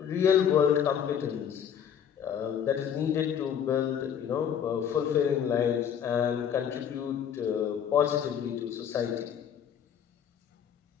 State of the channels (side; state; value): right; quieter; 8.5 dB